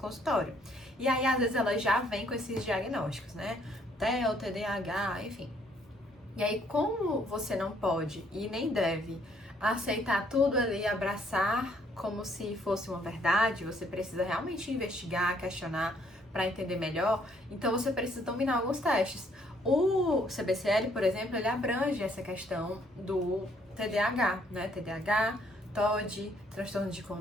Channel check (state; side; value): normal; both; correlation 0.67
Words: E aí, às vezes, elas já vêm com esses diagnósticos, né? TEA, TDAH, enfim. E aí, como você não pode e nem deve aceitar tudo ali, abraçar como se fosse uma verdade, você precisa realmente investigar, questionar para entender melhor, então você precisa dominar alguns testes. O CBCL, por exemplo, ele abrange essa questão do TDAH, né? TDAH, TOD, transtorno de